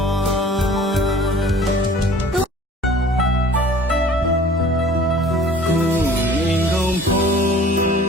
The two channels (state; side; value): normal; both; correlation 0.48